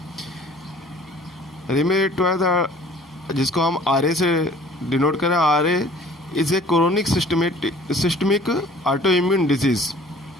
रेमेटॉइड, जिसको हम आर से डिनोट करें, R is a chronic systemic autoimmune disease.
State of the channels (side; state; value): both; normal; correlation 0.51